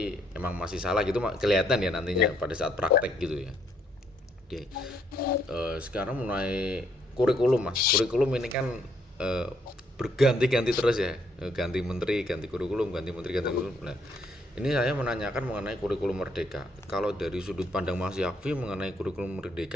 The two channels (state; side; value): normal; both; correlation 0.70